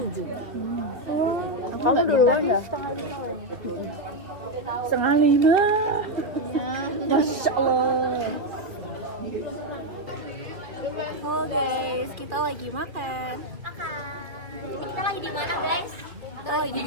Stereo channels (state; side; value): late; left; 2.6 ms